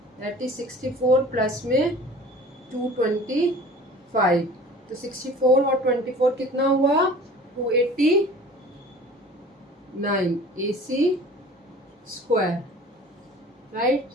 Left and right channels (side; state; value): both; normal; correlation 0.44